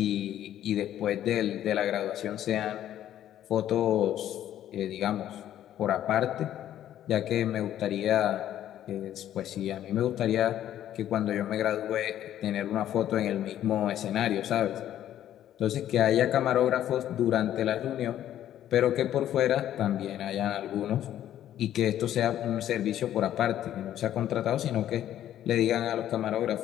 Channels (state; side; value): quieter; right; 11.6 dB